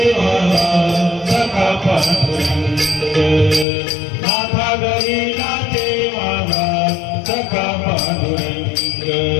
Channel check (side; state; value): right; drops out; at 3.7 s